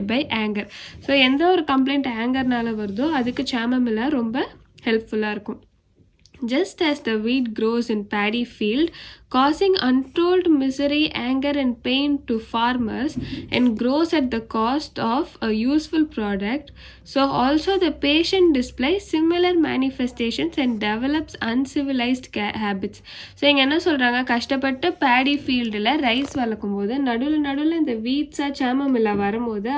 by anger. So எந்த ஒரு complaint ஆங்கர்னால வருதோ அதுக்கு chamomilla ரொம்ப ஹெல்ப்ஃபுல்லாக இருக்கும். Just as the wheat grows in paddy field, causing untold misery, anger and pain to farmers and grows at the cost of a useful product, so also the patient displays similar manifestations and develops uncivilized habits. So இங்கே என்ன சொல்கிறாங்க, கஷ்டப்பட்டு பேடி ஃபீல்டில் rice வளர்க்கும் போது நடுவில் இந்த வீட்ஸாக சாமமில்லா வரும்போது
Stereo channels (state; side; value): identical; both; correlation 1.00